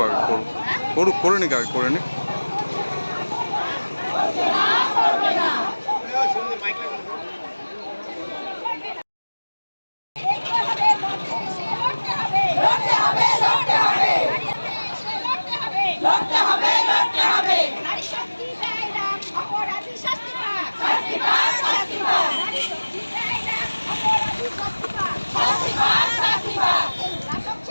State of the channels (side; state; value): both; inverted; correlation -1.00